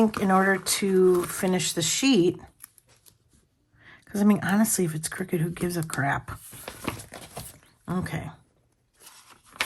in order to finish the sheet, because I mean, honestly, if it's crooked, who gives a crap? Okay.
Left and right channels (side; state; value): both; identical; correlation 1.00